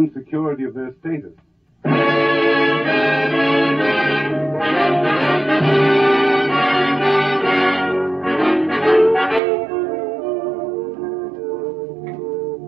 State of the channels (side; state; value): left; drops out; at 9.4 s